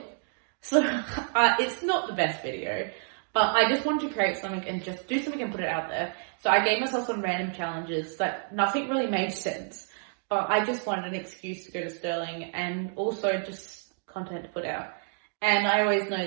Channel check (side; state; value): left; silent; 56 dB below the other